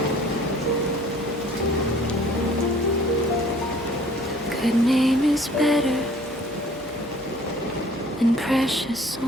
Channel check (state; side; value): noise; right; hum, 24 dB below the sound